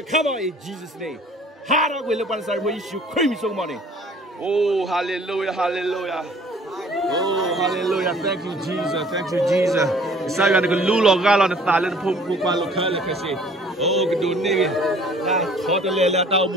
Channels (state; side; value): normal; both; correlation 0.53